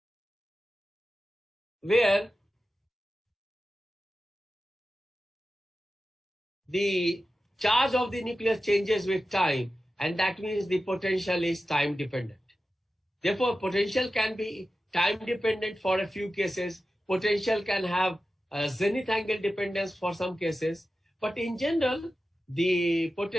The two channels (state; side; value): normal; both; correlation 0.93